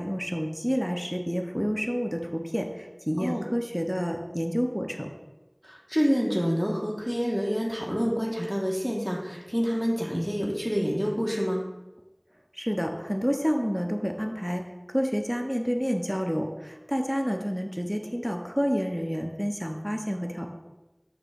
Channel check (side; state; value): both; identical; correlation 1.00